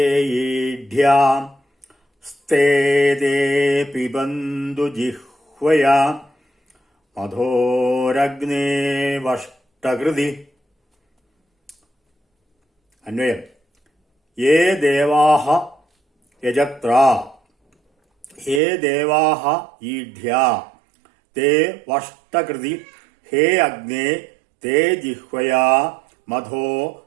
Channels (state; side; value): drops out; left; at 18.6 s